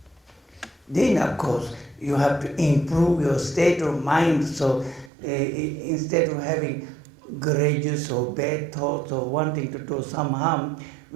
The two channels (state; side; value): drops out; left; at 5.1 s